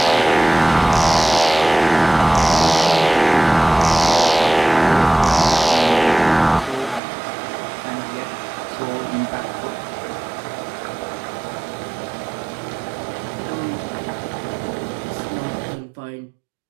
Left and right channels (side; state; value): left; drops out; at 7.0 s